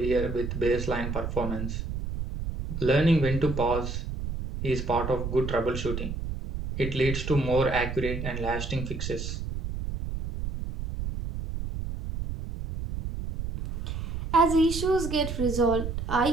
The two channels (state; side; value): noise; right; rumble, 5 dB below the sound